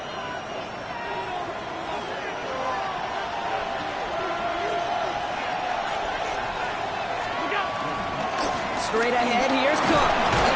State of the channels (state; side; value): identical; both; correlation 1.00